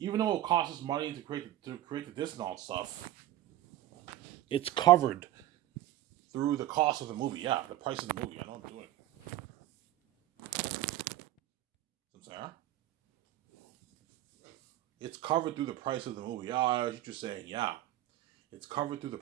though it costs us money to create the disc and all that stuff, it's covered through the cost of the movie. Yeah, the price of the movie. I know I'm doing it. Sorry? It's covered through the price of the movie. Yeah, I was just saying, yeah. It's covered through the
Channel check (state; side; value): quieter; left; 14.3 dB